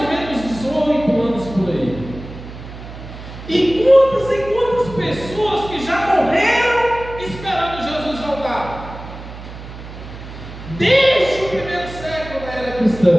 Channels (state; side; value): noise; right; hum, 13 dB below the sound